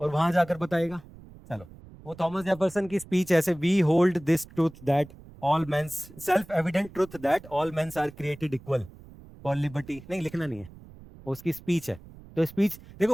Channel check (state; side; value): noise; right; rumble, 20 dB below the sound